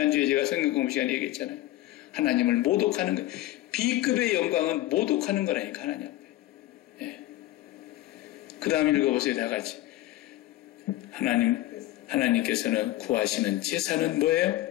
제가 성경 공부 시간에 얘기했잖아요. 하나님을 모독하는 거예요. B급의 영광은 모독하는 거라니까 하나님 앞에. 그 다음 읽어보세요. 다 같이. 하나님께서는 구하시는 제사는 뭐예요?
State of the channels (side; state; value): right; quieter; 15.9 dB